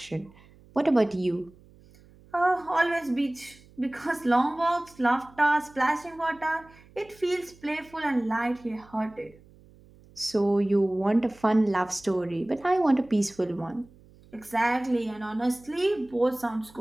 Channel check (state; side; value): noise; right; hum, 26 dB below the sound